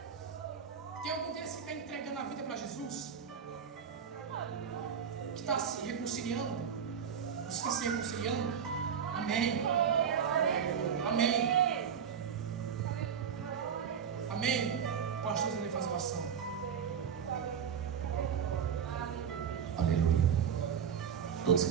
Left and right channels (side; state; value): left; quieter; 7.5 dB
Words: Tem algum desses que está entregando a vida para Jesus? Que está se reconciliando? Você está se reconciliando? Amém. Amém. Amém. Pastor, ele faz oração. Aleluia. Todos